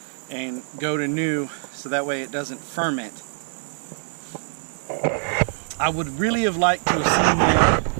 and go to new, so that way it doesn't ferment. I would really have liked to have seen them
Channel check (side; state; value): left; silent; digital silence